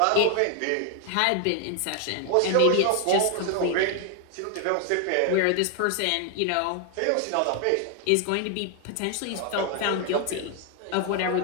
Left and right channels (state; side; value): different; both; correlation 0.00